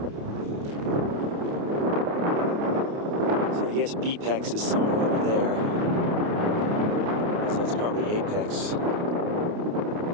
So I guess Bepex is somewhere over there. So that's probably apex.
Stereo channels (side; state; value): left; late; 29 ms